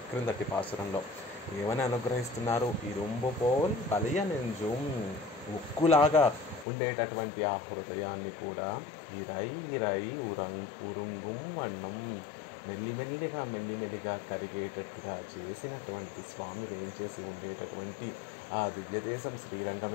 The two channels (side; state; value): right; drops out; at 6.7 s